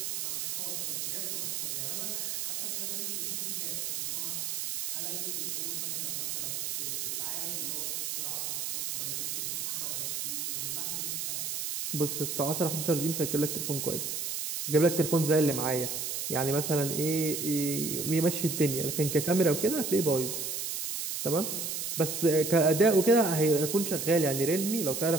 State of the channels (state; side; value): noise; right; hiss, 2 dB below the sound